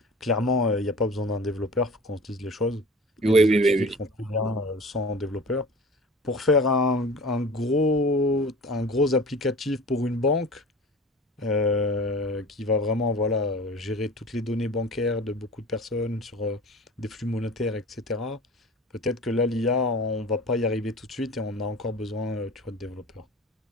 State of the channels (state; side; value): normal; both; correlation 0.39